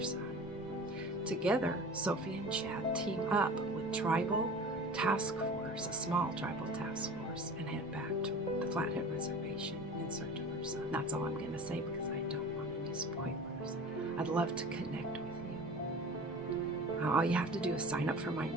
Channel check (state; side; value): normal; both; correlation 0.38